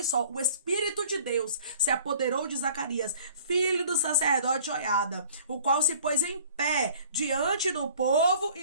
só, o Espírito de Deus se apoderou de Zacarias, filho do sacerdote Joiada, o qual se pôs em pé diante do povo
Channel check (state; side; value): inverted; both; correlation -0.51